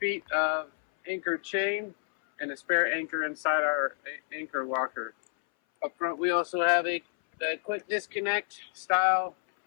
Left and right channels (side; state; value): right; silent; 59 dB below the other